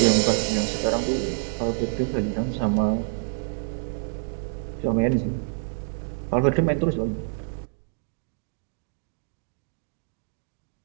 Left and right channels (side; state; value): left; silent; digital silence